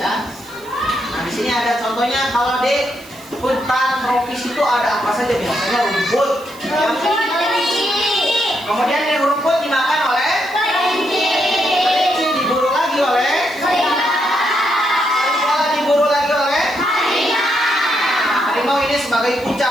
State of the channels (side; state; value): right; noise; hiss, 22 dB below the sound